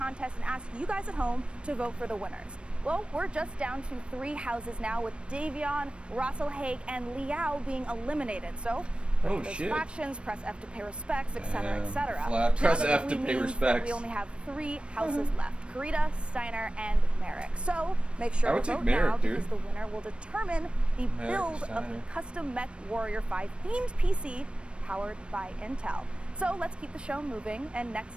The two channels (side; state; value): left; late; 0.058 ms